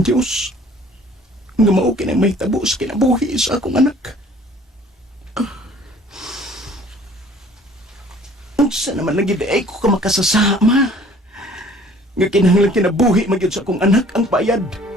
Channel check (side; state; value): both; normal; correlation 0.53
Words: Diyos nga mao kinang may tabo sa kinabuhi sa akong anak. Unsa naman nagiday ko ka makasasama nga kinahanglan kinabuhi magyud sa akong anak ang bayad.